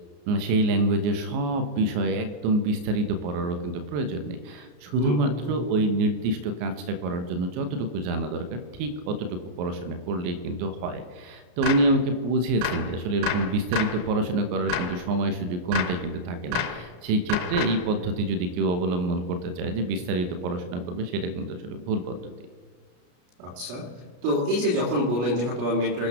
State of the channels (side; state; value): left; late; 33 ms